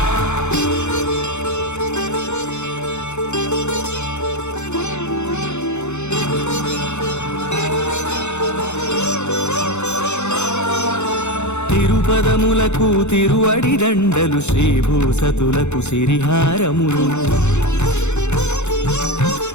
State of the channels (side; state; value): right; late; 0.82 ms